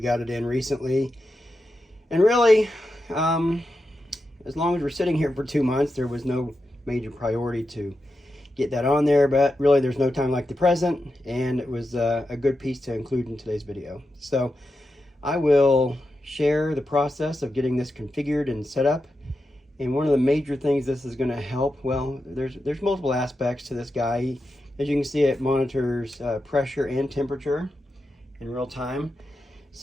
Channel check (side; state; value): both; normal; correlation 0.89